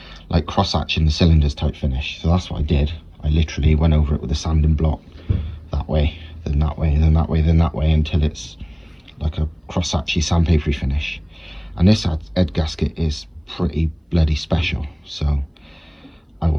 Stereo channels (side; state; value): both; identical; correlation 1.00